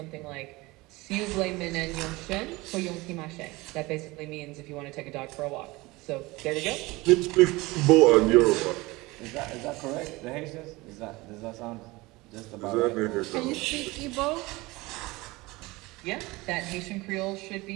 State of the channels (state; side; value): quieter; left; 21.9 dB